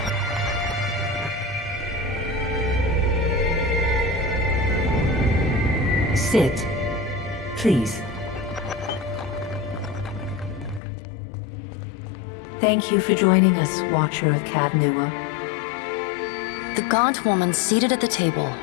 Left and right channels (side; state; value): right; drops out; at 10.8 s